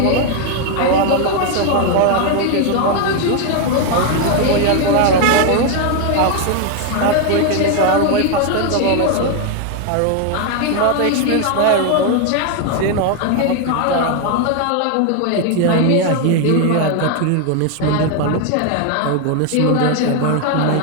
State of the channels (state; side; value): different; both; correlation 0.01